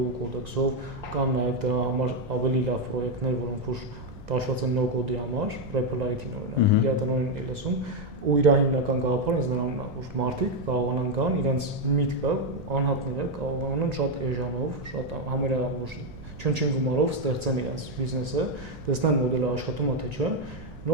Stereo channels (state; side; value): noise; right; rumble, 17 dB below the sound